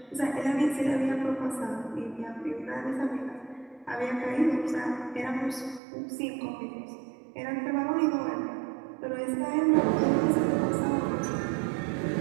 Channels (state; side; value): drops out; left; at 5.8 s